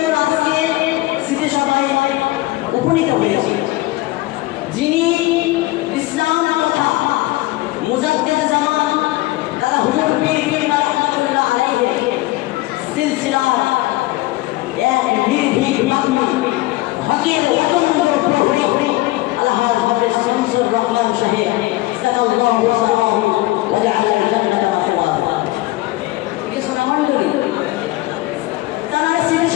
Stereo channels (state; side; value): quieter; right; 18.8 dB